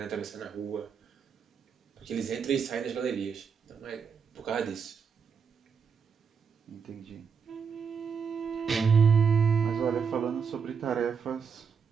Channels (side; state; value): left; quieter; 6.2 dB